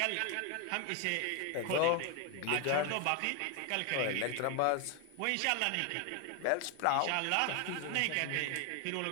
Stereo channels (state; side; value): different; both; correlation 0.01